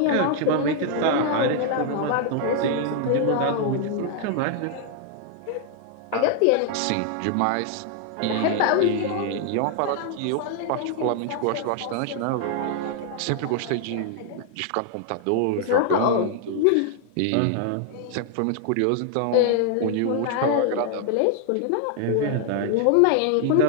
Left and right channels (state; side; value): different; both; correlation 0.00